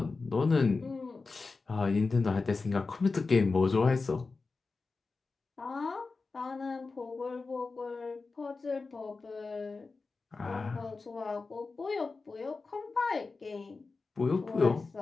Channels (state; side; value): quieter; right; 4.1 dB